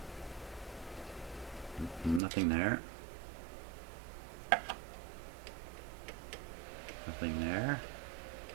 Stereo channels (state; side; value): drops out; left; at 2.2 s